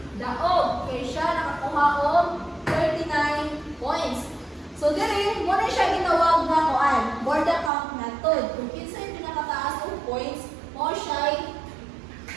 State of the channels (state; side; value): drops out; left; at 7.7 s